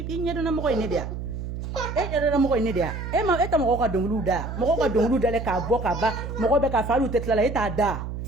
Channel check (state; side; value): noise; right; hum, 6 dB below the sound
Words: nyado na mo ko ne dia era mo ko ne dia ma eta mo ko donglu da le ka bo ka ba mo ko be ka falu tetla la ita da